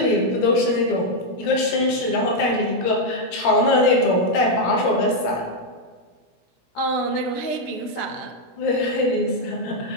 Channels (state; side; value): late; right; 17 ms